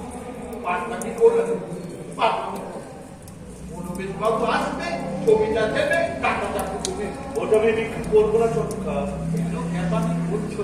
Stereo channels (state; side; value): identical; both; correlation 1.00